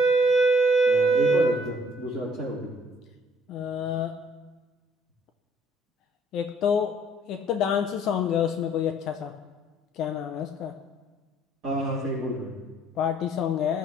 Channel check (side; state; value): both; normal; correlation 0.61